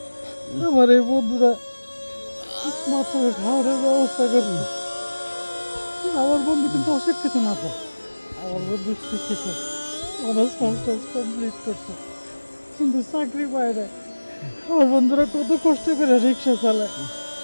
আমার এই বন্ধুরা বাচ্চাকে খাওয়ানোর ব্যবস্থা করছে। আমার বন্ধু কিন্তু অশিক্ষিত না তো, আমার বন্ধু শিক্ষিত, অনার্স মাস্টার্স কমপ্লিট করছে, কিন্তু চাকরি পায় না। আমার বন্ধুরা কত কষ্ট করে রিক্সা চালায়,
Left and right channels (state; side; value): inverted; both; correlation -1.00